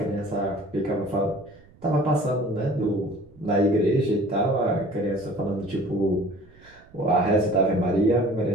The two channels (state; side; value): noise; right; rumble, 26 dB below the sound